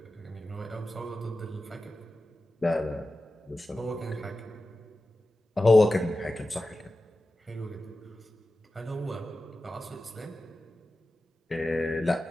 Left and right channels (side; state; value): both; normal; correlation 0.94